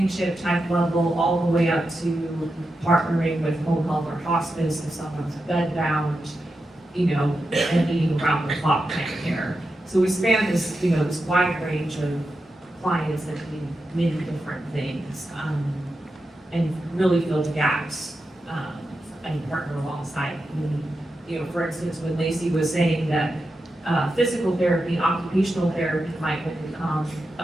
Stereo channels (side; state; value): both; normal; correlation 0.89